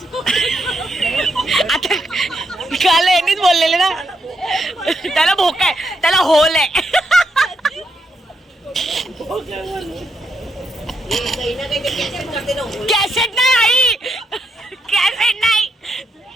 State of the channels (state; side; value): normal; both; correlation 0.80